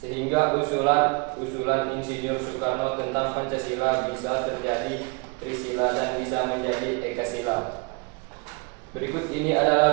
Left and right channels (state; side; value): quieter; left; 29.5 dB